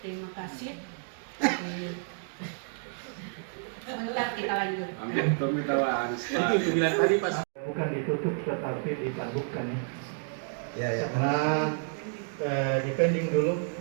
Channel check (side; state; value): left; silent; digital silence